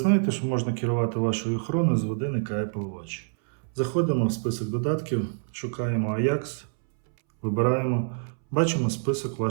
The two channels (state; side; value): silent; left; 61 dB below the other